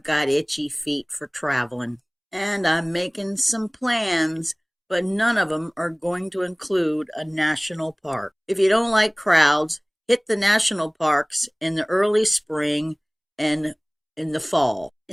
got itchy feet for traveling. And I'm making some plans, but none of them are going to include a national park. If you don't like crowds, hit the national parks in the early spring and in the fall.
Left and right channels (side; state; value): both; identical; correlation 1.00